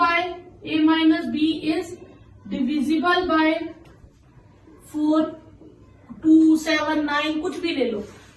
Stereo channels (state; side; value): identical; both; correlation 1.00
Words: a minus B is divisible by 4 2 7 9 कुछ भी ले लो,